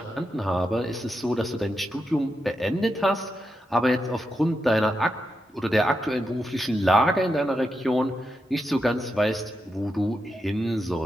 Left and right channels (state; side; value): normal; both; correlation 0.86